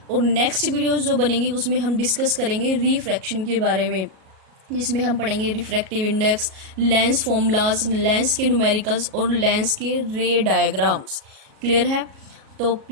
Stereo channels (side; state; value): left; late; 37 ms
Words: और नेक्स्ट वीडियोस जो बनेंगी उसमें हम डिस्कस करेंगे रिफ्रैक्शन के बारे में, जिसमें हम पढ़ेंगे refractive index, lens formulas, lens के न्यूमेरिकल्स और लेंस के रे डायग्राम्स। क्लियर है? तो